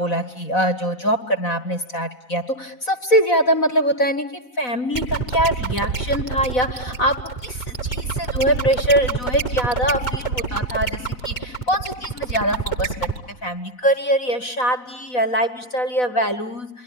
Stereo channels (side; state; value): right; late; 4.1 ms